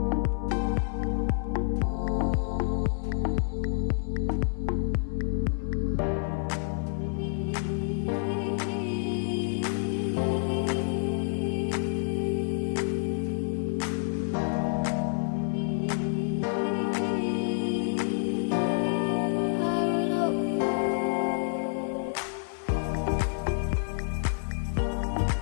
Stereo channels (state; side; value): silent; right; 56 dB below the other